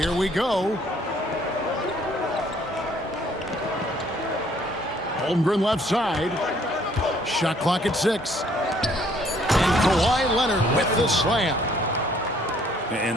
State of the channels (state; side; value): normal; both; correlation 0.62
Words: we go. Holmgren left side. Shot clock at 6. And Kawhi Leonard with the slam.